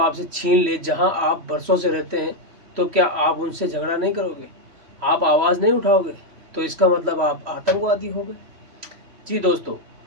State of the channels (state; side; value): late; left; 3.0 ms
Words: छीन ले जहां आप बरसों से रहते हैं, तो क्या आप उनसे झगड़ा नहीं करोगे? आप आवाज नहीं उठाओगे? तो इसका मतलब आप आतंकवादी हो गए। जी दोस्तों,